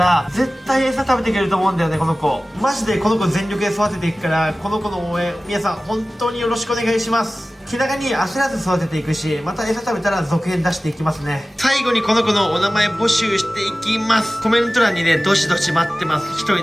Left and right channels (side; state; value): both; normal; correlation 0.97